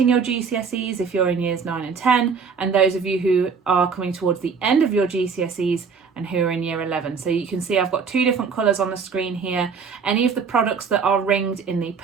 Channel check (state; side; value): quieter; left; 5.6 dB